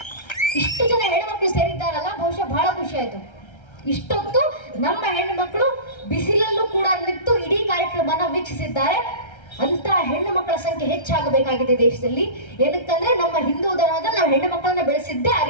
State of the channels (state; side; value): late; right; 1.3 ms